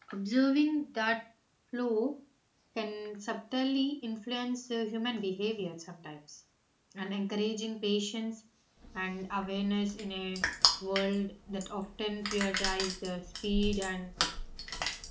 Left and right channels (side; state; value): both; identical; correlation 1.00